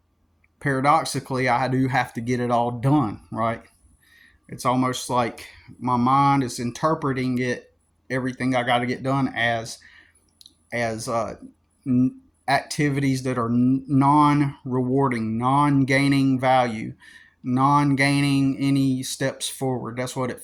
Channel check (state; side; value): identical; both; correlation 1.00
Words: paradoxically, I do have to get it all done, right? It's almost like my mind is interpreting everything I got to get done as activities that are non-rewarding, non-gaining value, non-gaining any steps forward. That's what it